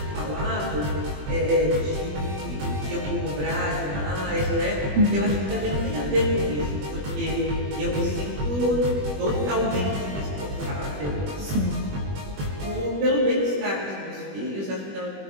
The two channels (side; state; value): left; late; 21 ms